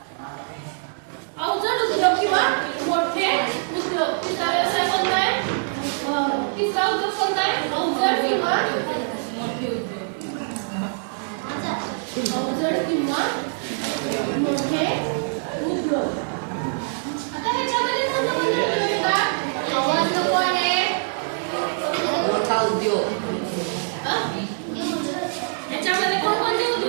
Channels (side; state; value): left; silent; digital silence